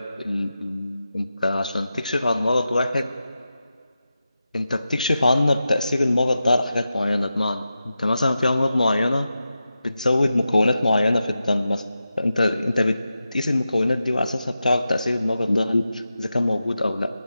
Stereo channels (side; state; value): both; inverted; correlation -0.91